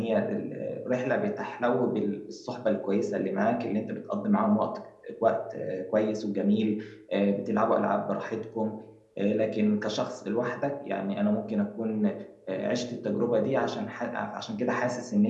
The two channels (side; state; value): both; identical; correlation 1.00